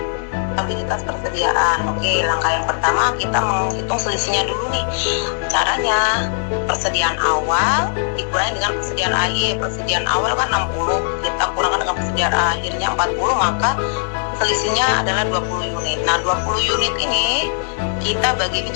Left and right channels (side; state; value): right; silent; digital silence